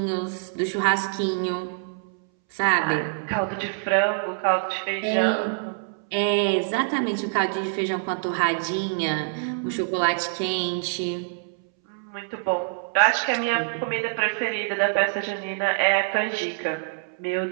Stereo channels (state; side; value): silent; left; 62 dB below the other